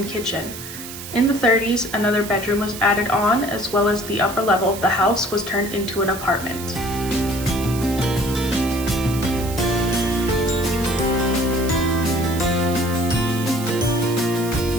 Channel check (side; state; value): right; noise; hiss, 11 dB below the sound